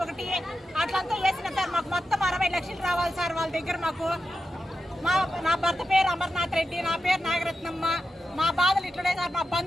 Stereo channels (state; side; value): normal; both; correlation 0.89